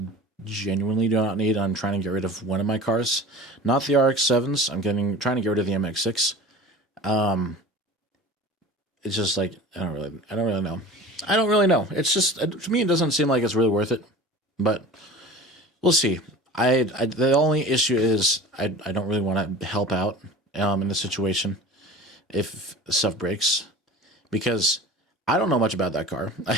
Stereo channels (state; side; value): normal; both; correlation 0.39